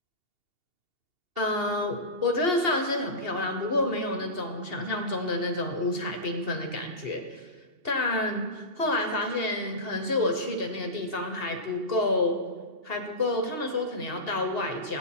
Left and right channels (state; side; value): late; left; 2.8 ms